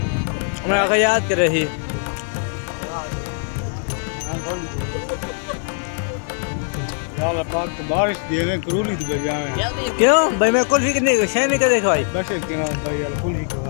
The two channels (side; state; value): right; silent; 59 dB below the other